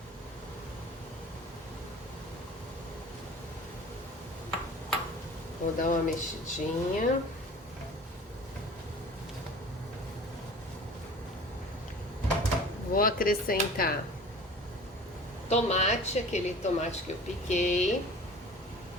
Vou dar uma mexidinha. Vou acrescentar tomate, aquele tomate que eu piquei.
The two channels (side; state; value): both; normal; correlation 0.42